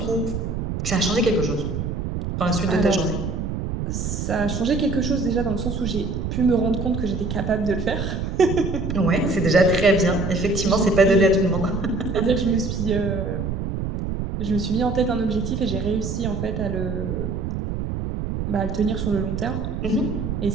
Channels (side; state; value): right; noise; rumble, 3 dB below the sound